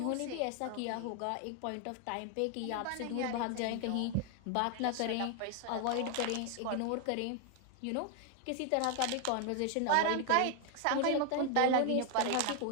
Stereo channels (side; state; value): both; different; correlation 0.00